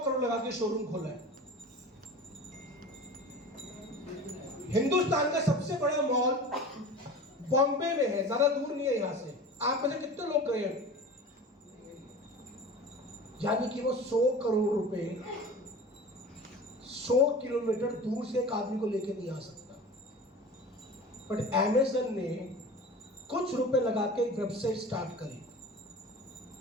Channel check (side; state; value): both; normal; correlation 0.36